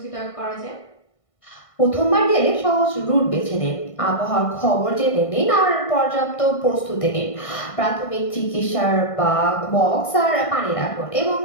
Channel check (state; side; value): late; right; 1.6 ms